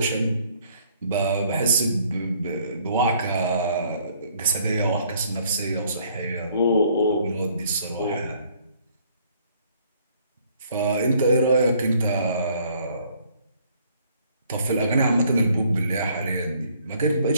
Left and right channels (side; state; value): both; inverted; correlation -0.62